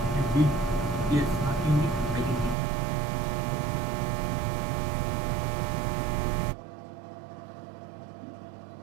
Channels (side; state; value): left; drops out; at 2.6 s